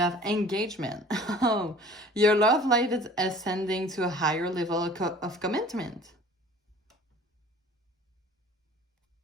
engagement. Oh, your love life is ascending to a higher level of commitment.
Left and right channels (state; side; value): normal; both; correlation 0.48